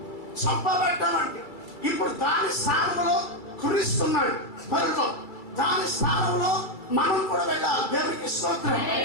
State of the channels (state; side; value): late; right; 2.3 ms